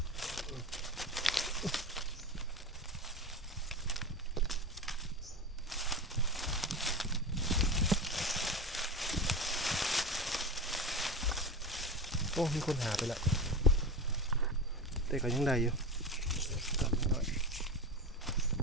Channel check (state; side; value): normal; both; correlation 0.24